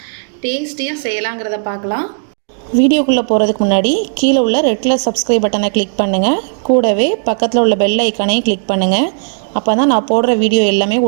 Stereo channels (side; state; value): left; silent; digital silence